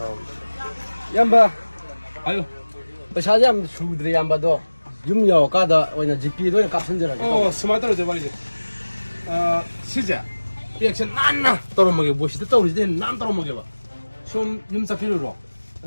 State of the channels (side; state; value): both; inverted; correlation -1.00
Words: 양바 아유. pesa yam sudri yamba do yum yo kada oina GP do kapsenjera 스마트로 돼 버리지. 시자. 리액션 난나 떨어먹게 뭐시도 떨어지대 난 떨어먹게 봐. 좀 염사 필요로.